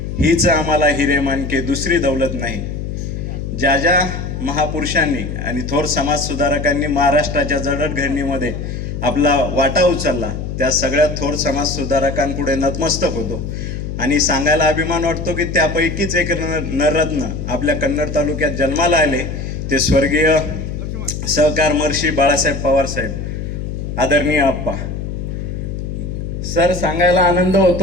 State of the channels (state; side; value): noise; left; hum, 5 dB below the sound